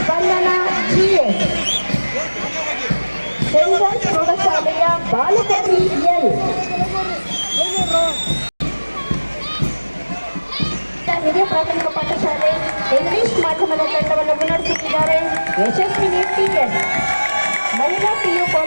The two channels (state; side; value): inverted; both; correlation -1.00